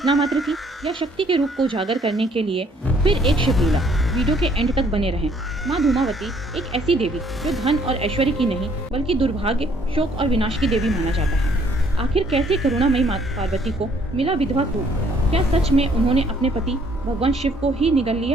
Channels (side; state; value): both; normal; correlation 0.63